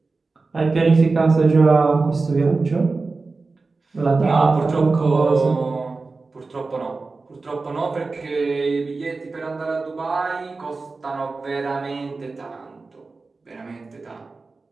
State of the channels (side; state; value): left; quieter; 3.9 dB